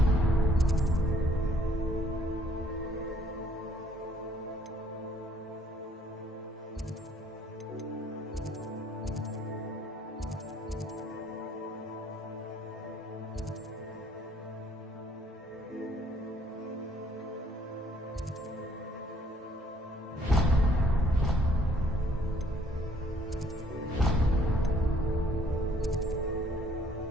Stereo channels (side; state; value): both; normal; correlation 0.63